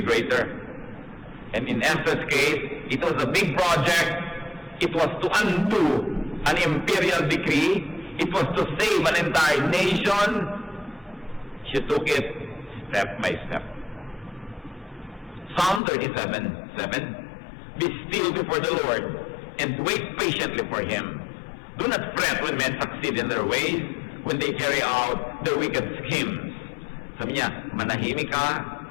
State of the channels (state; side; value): drops out; right; at 15.8 s